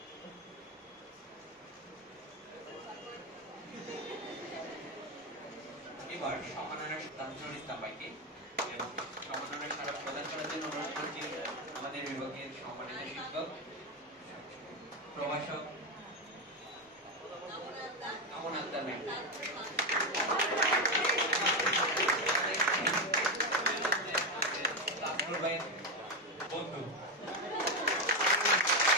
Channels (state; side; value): normal; both; correlation 0.10